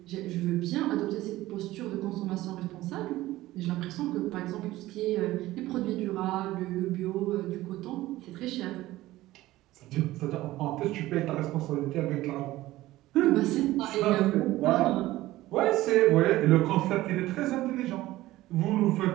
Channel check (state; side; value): quieter; left; 16.7 dB